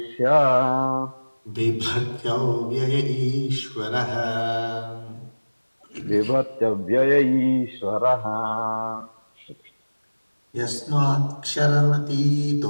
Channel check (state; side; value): inverted; both; correlation -1.00